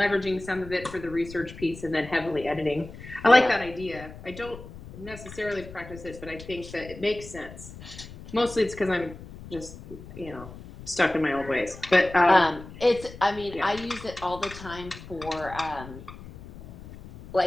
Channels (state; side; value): noise; left; rumble, 15 dB below the sound